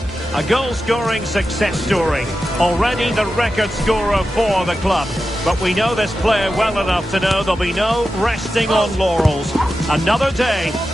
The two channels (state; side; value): normal; both; correlation 0.91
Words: A goal-scoring success story. Already the record scorer for the club. But we know this player well enough to know there'll be no resting on laurels. Another day,